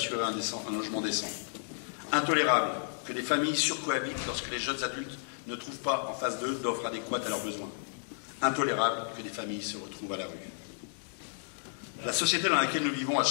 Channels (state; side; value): silent; right; 56 dB below the other